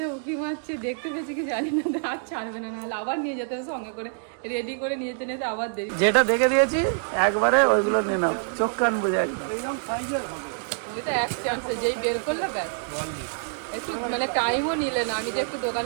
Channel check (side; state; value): left; silent; digital silence